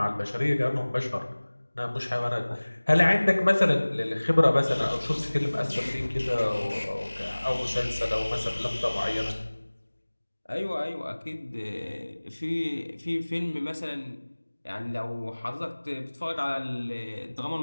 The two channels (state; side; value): inverted; both; correlation -1.00